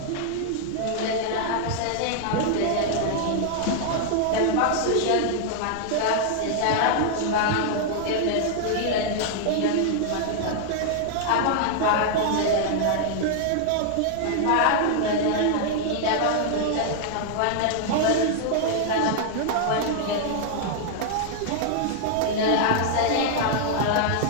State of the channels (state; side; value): different; both; correlation -0.01